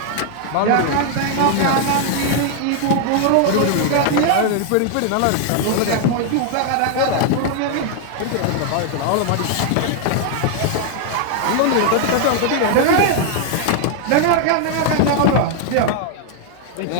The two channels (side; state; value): both; different; correlation 0.00